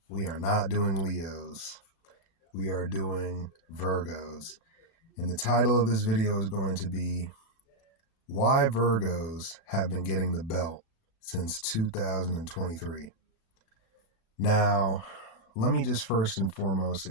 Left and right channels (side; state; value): right; late; 35 ms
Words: we are not doing Leos, we are doing Virgos. And the title of this video is going to be Why Virgos Have Been Getting the Belt Since 2023. Now, let me just first and foremost